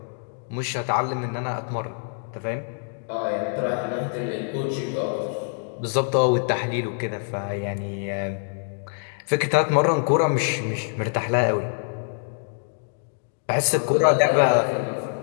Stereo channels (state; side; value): silent; right; 62 dB below the other